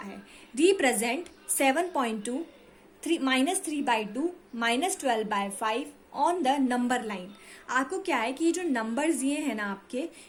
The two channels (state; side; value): identical; both; correlation 1.00